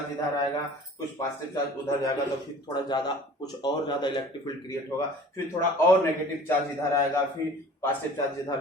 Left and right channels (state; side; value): normal; both; correlation 0.45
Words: इधर आएगा, कुछ पॉजिटिव चार्ज उधर जाएगा, तो फिर थोड़ा ज्यादा कुछ और ज्यादा इलेक्ट्रिक फील्ड क्रिएट होगा, फिर थोड़ा और नेगेटिव चार्ज इधर आएगा, फिर पॉजिटिव चार्ज